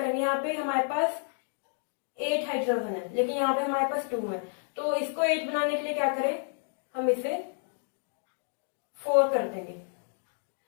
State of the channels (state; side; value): silent; right; digital silence